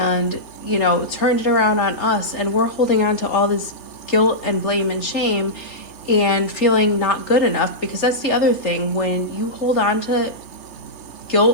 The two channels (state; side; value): late; right; 3.1 ms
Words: turned it around on us, and we're holding on to all this guilt and blame and shame and feeling not good enough, because that's the other thing. When you hold on to